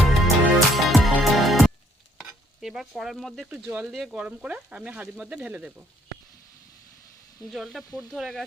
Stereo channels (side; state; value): both; normal; correlation 0.66